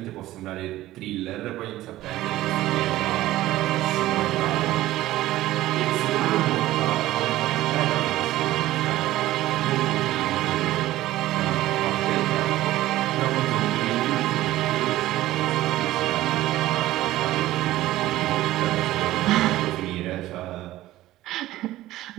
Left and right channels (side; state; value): left; quieter; 15.7 dB